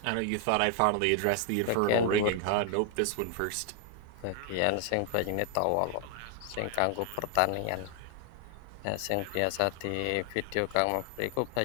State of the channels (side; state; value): both; different; correlation 0.00